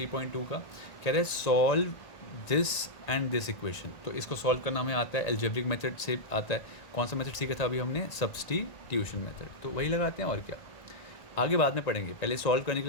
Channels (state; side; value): late; right; 1.5 ms